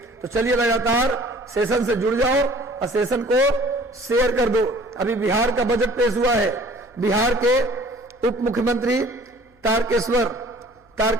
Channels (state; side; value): normal; both; correlation 0.50